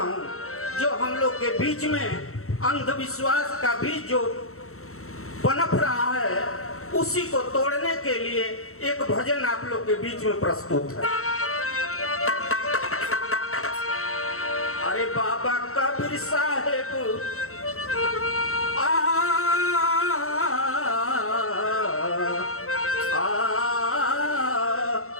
जो हम लोग के बीच में अंधविश्वास का बीज जो पनप रहा है, उसी को तोड़ने के लिए एक भजन आप लोग के बीच में प्रस्तुत है। अरे बाबा कबीर साहेब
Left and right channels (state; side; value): late; right; 0.63 ms